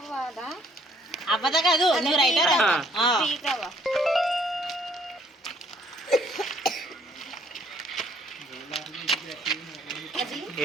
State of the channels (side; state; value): both; normal; correlation 0.63